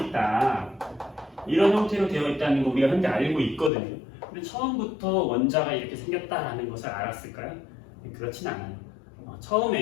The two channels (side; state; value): right; drops out; at 3.7 s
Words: 이런 형태로 되어 있다는 거 우리가 현재 알고 있거든요. 근데 처음부터 원자가 이렇게 생겼다라는 것을 알았을까요? 그렇진 않아요.